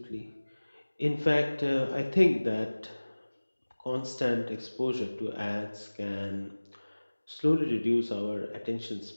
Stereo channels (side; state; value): both; inverted; correlation -1.00